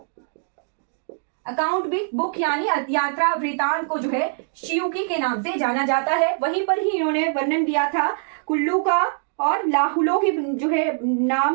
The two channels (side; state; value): left; silent; digital silence